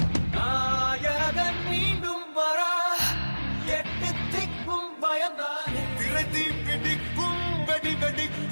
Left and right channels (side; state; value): both; inverted; correlation -1.00